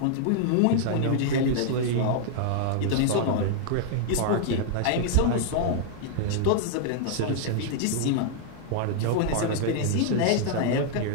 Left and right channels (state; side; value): different; both; correlation -0.01